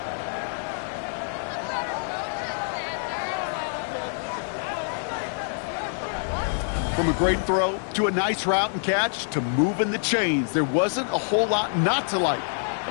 From a great throw to a nice route and catch to moving the chains, there wasn't a whole lot not to like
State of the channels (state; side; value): silent; right; digital silence